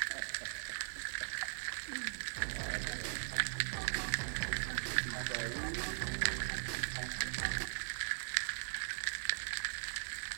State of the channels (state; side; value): silent; left; digital silence